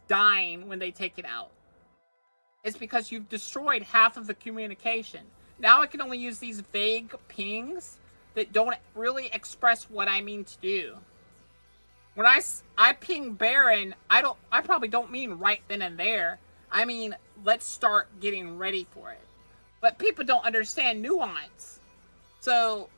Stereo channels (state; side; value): inverted; both; correlation -1.00